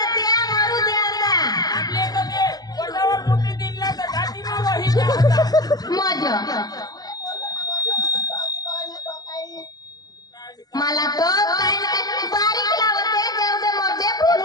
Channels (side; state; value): right; late; 0.19 ms